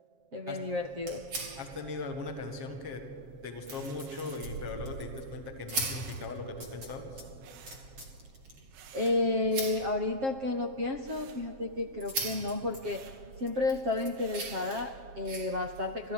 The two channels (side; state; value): left; late; 7.5 ms